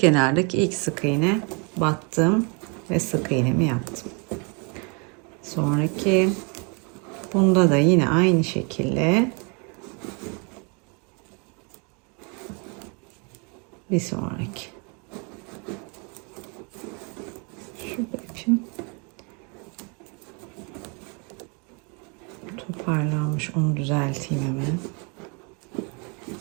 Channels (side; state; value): left; quieter; 34.0 dB